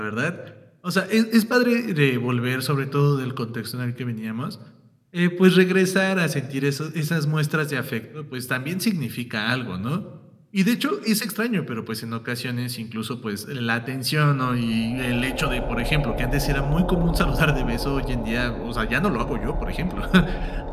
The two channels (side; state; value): both; identical; correlation 1.00